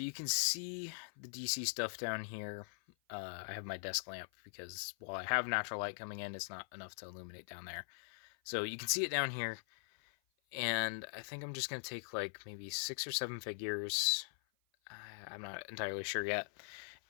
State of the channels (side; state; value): right; silent; 50 dB below the other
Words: you can see the DC stuff down here. I have my desk lamp because while I have natural light coming in, it's not enough to illuminate down there. So you can see it down here, and I think I'm just going to take like maybe 6 or 7 figures. I'm not entirely sure yet,